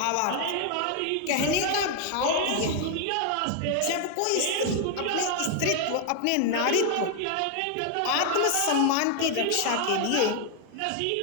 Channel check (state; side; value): different; both; correlation 0.00